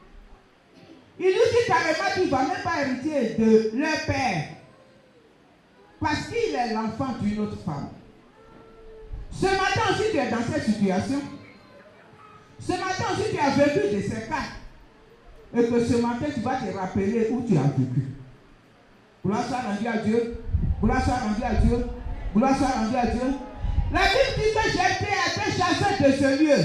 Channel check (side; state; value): both; identical; correlation 1.00